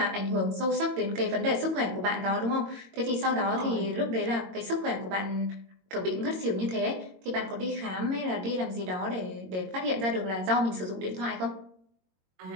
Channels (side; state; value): left; late; 22 ms